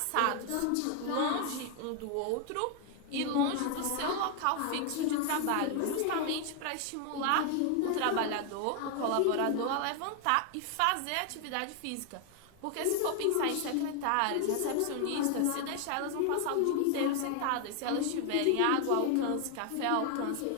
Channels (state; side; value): different; both; correlation 0.00